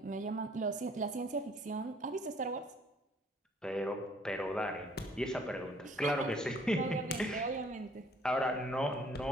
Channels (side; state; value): both; normal; correlation 0.59